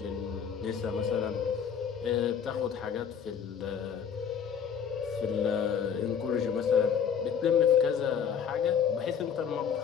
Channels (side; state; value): right; quieter; 7.5 dB